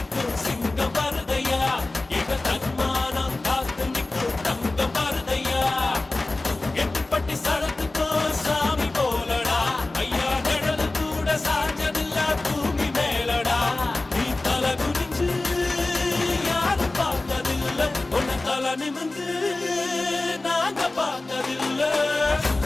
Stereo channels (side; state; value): right; quieter; 3.0 dB